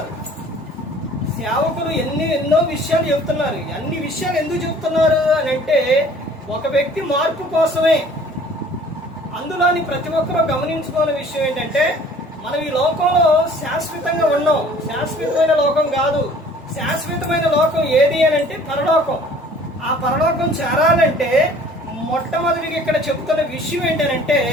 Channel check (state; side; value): normal; both; correlation 0.51